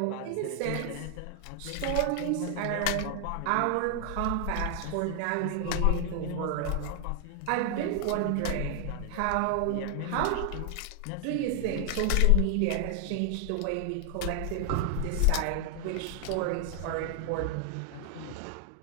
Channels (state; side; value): different; both; correlation 0.00